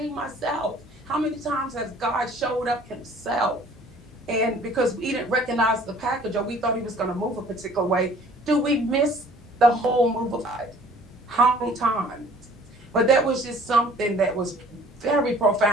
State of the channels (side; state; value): both; normal; correlation 0.52